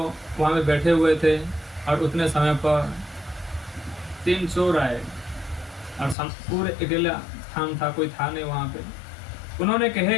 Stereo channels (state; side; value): drops out; right; at 6.2 s